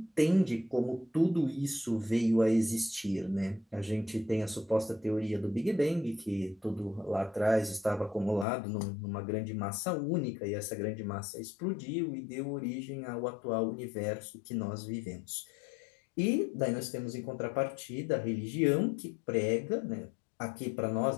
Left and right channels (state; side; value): drops out; right; at 8.5 s